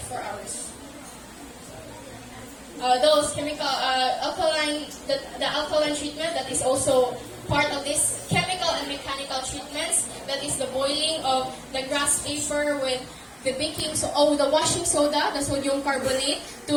hours. Those chemical the alkaline treatment that is also part of this chemical and mechanical treatments, that is the boiling of the grass paper with the the washing soda, the sodium carbonate,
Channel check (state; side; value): identical; both; correlation 1.00